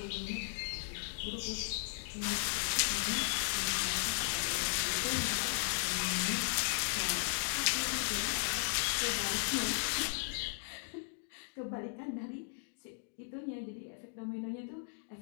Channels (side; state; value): right; silent; digital silence